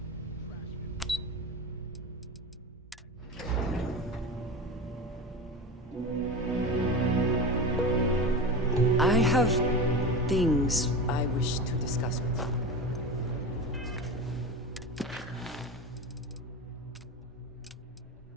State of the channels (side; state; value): both; normal; correlation 0.26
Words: I have things I wish to discuss with you.